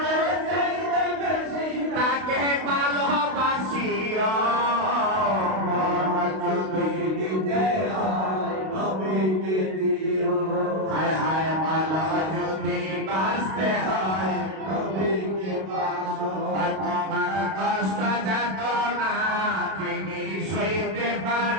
চাইতে বেশি তাকে ভালোবাসিও মন যদি দিতে হয় নবীকে দিও হায় হায় ভালো যদি বাঁচতে হয় নবীকে বাসো আর তোমার কষ্ট যাত না তিনি সইতে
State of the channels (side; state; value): left; late; 32 ms